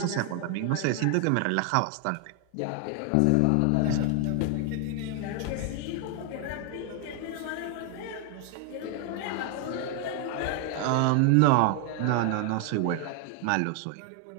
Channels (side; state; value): both; different; correlation 0.00